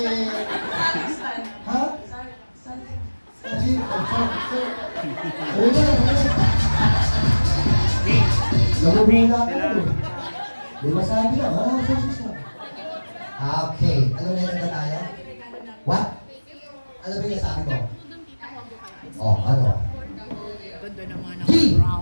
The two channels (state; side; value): inverted; both; correlation -1.00